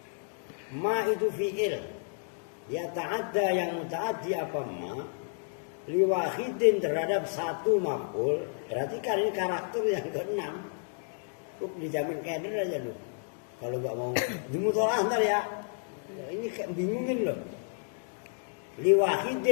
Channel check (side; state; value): right; silent; digital silence